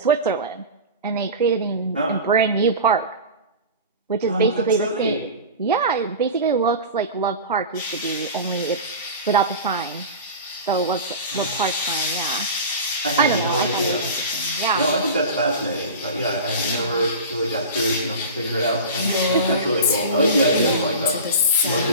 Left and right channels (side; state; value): both; inverted; correlation -0.30